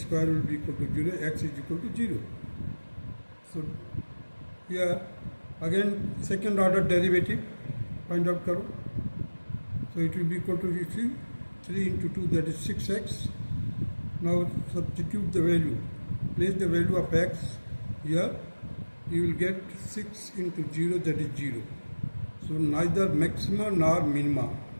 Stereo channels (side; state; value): both; inverted; correlation -1.00